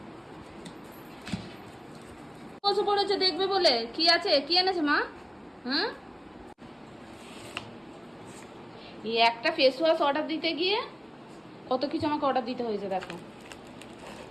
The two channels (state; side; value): identical; both; correlation 1.00